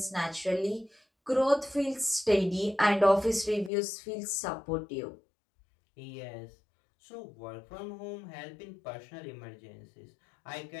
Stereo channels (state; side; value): drops out; right; at 3.7 s